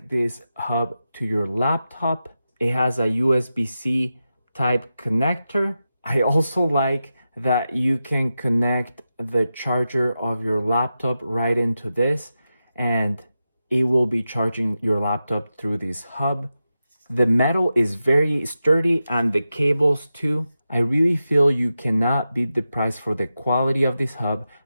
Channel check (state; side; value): inverted; both; correlation -0.91